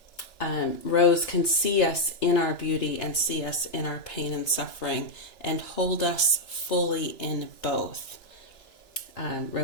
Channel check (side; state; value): right; late; 2.9 ms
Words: Rose can see us in our beauty and see us in our pain and suffering and hold us fully in both.